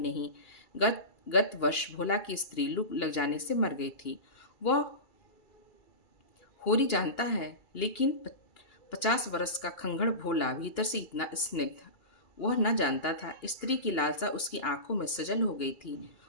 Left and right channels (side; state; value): right; late; 2.3 ms